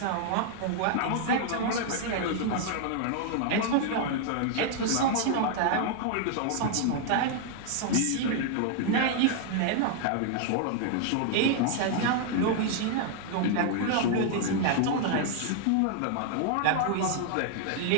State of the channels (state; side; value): different; both; correlation 0.00